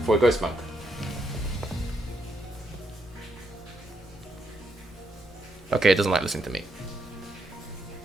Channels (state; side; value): normal; both; correlation 0.79